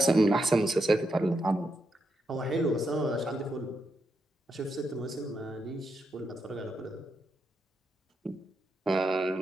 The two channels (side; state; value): both; normal; correlation 0.83